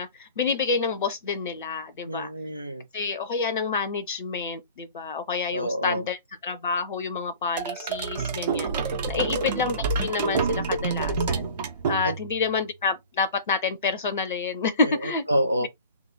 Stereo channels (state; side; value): inverted; both; correlation -0.42